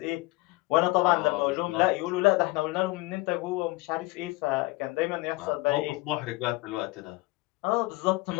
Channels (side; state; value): right; quieter; 21.9 dB